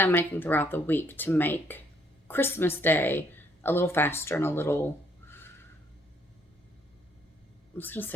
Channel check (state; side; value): normal; both; correlation 0.67